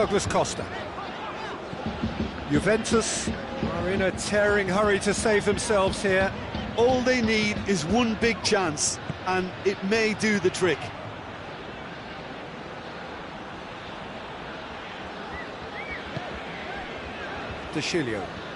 Costa. Juventus are in a tearing hurry to save themselves here. All they need is one big chance, and it may do the trick. De Chilio.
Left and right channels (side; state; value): both; identical; correlation 1.00